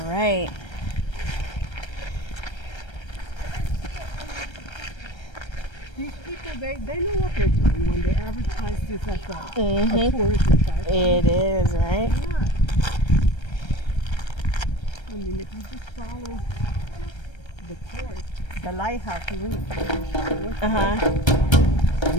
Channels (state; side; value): late; right; 1.3 ms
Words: right. These people, they know what they're doing when they advertise this as a tourism site. It is, right? Yeah. I mean, if you just follow the course, the lighthouse, you wouldn't find it. Uh-huh.